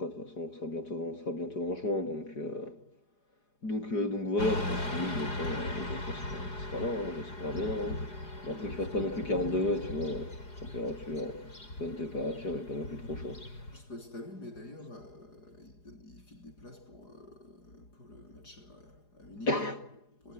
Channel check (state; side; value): late; right; 4.8 ms